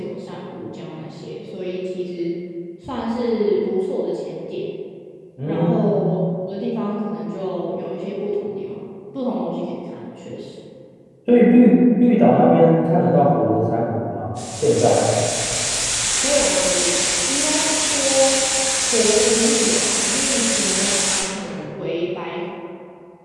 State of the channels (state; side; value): identical; both; correlation 1.00